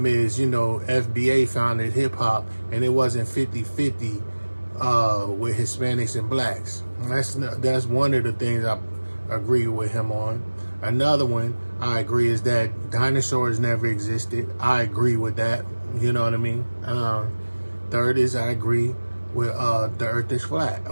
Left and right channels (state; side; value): inverted; both; correlation -1.00